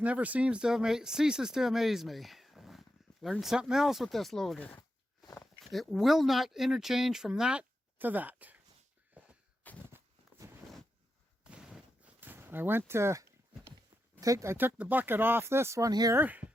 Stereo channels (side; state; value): both; normal; correlation 0.87